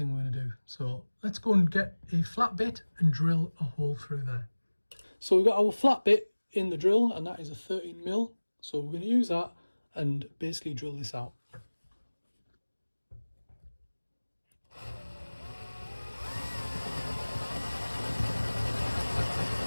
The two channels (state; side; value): inverted; both; correlation -1.00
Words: we're going to do. So let's go and get a flat bit and drill a hole through there. So we've got our flat bit in the drill, and that is a 13mm. So we're going to use that and basically drill this out.